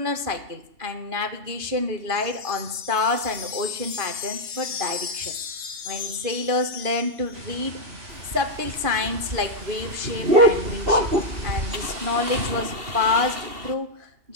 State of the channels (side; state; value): left; late; 2.5 ms